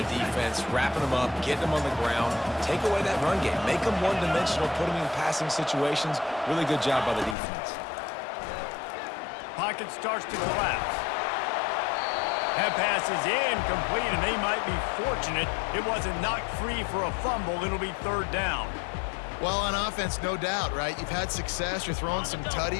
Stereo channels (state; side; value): drops out; right; at 7.4 s